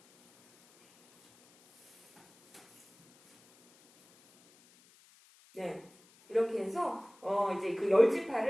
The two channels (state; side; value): noise; left; hiss, 29 dB below the sound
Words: 이렇게 해서 이제 그